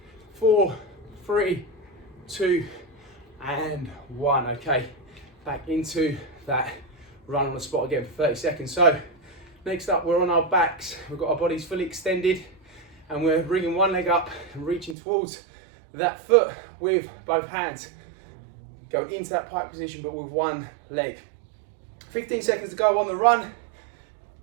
4, 3, 2, and 1. Okay, back into that run on the spot again for 30 seconds. So next up, we're on our backs. We've got our bodies fully extended and we're bringing one leg up and reaching towards that foot with both hands. Going into that pike position, but with one leg. 15 seconds to go on the run.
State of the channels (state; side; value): drops out; left; at 15.0 s